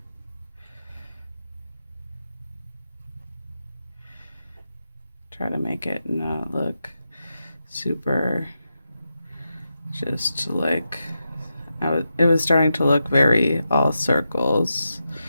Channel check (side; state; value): both; inverted; correlation -0.88